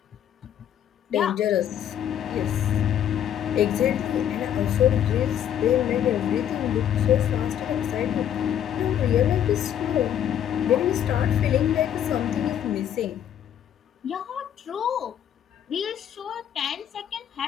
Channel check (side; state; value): right; quieter; 10.0 dB